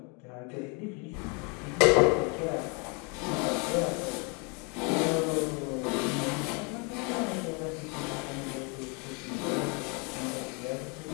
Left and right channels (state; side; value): quieter; right; 32.8 dB